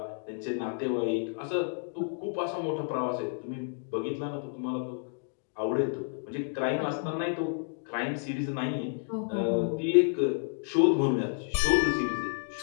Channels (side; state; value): right; silent; 58 dB below the other